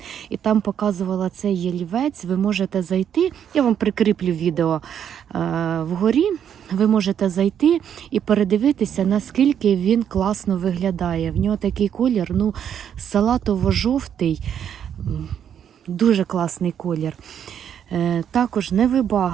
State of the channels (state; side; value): quieter; left; 8.9 dB